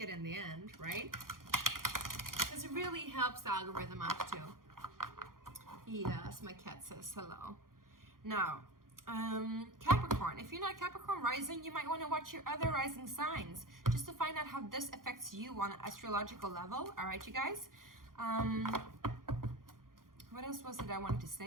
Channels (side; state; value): left; late; 0.91 ms